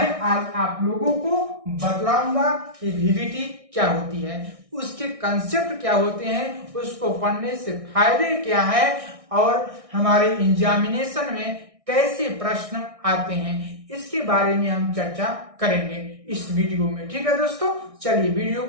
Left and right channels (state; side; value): late; left; 1.6 ms